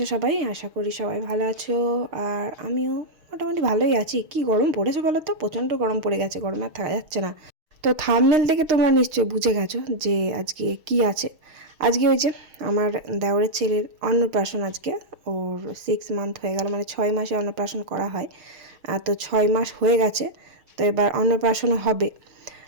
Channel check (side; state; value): left; late; 6.4 ms